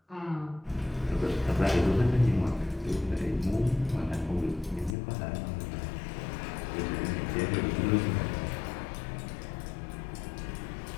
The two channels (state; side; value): drops out; right; at 5.0 s